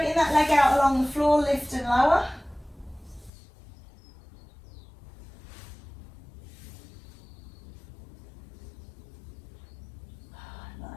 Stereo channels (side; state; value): right; drops out; at 3.3 s